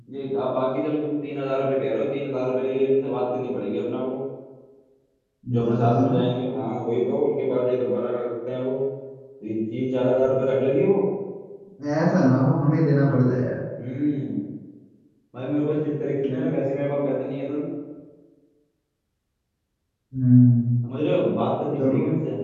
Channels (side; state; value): both; identical; correlation 1.00